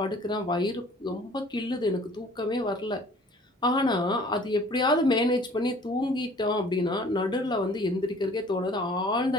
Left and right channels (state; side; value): normal; both; correlation 0.51